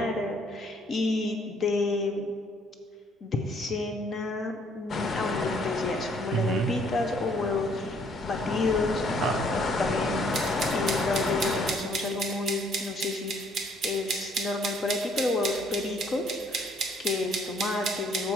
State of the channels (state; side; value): normal; both; correlation 0.63